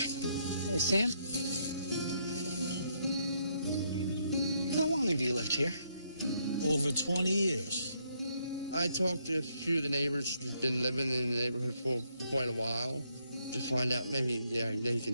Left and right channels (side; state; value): both; inverted; correlation -0.75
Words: Hey, Sam. How long have you lived here? Over 20 years. I talked to a few of the neighbors who've been living in the neighborhood for quite a while to find out maybe they can